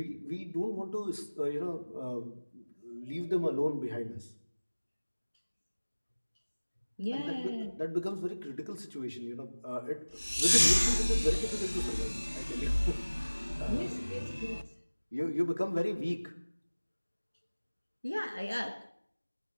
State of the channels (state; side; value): inverted; both; correlation -1.00